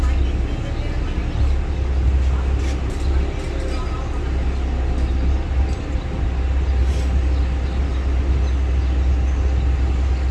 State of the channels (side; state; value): both; identical; correlation 1.00